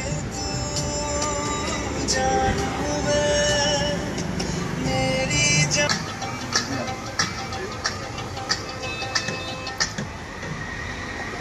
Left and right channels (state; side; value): identical; both; correlation 1.00